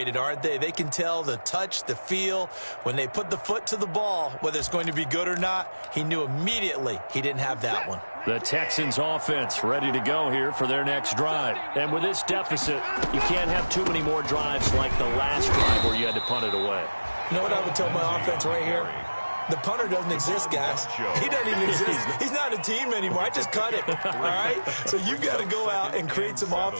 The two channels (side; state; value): both; inverted; correlation -1.00